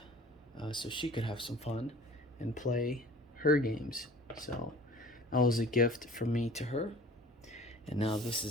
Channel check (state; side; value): normal; both; correlation 0.46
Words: so she could have some fun and play her games. So that was a gift from me to her, and now this